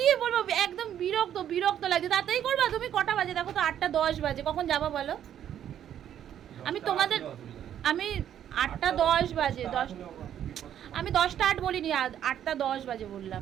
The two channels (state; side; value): quieter; left; 10.2 dB